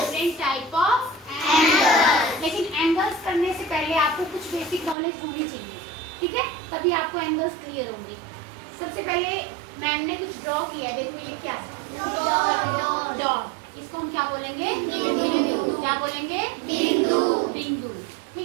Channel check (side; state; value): left; drops out; at 5.0 s